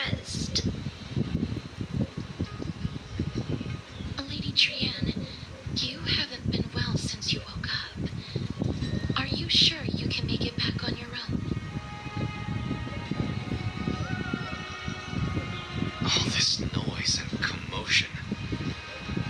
Lady Trian, you haven't been well since you woke up. Are you sure you can make it back on your own? All this noise and commotion.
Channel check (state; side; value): identical; both; correlation 1.00